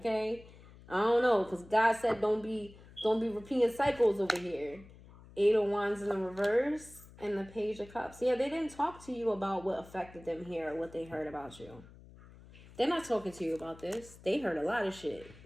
I don't know, because God said don't be repeating cycles over here. 8 of Wands in the reverse and the Page of Cups. Yeah, they didn't talk to you about what affected them here or what they heard about you. They're not talking to you about this. They heard a lot of shit.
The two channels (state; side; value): noise; left; hum, 21 dB below the sound